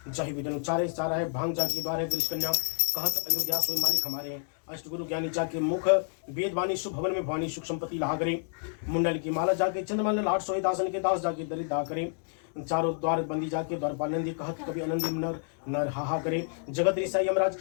जही विदन उच्चारे सारा है भांग जाकी द्वार है वृष कन्या कहत अयोध्या सोई मालिक हमारे हैं। अष्टगुरु ज्ञानी जाके मुख वेदवाणी शुभ भवन में भवानी सुख संपत्ति लाहा करे। मुंडल की माला जाके चंद्रमाल लाट सोई दासन के दास जाके दरिद्र करे। चारों द्वार बंदी जाके द्वारपाल नंदी कहत कभी आनंदी नर नर हाहा करे। जगत ऋषा यमराज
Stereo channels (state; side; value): silent; right; digital silence